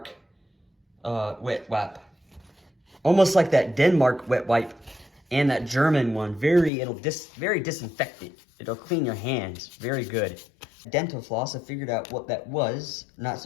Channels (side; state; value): right; drops out; at 6.7 s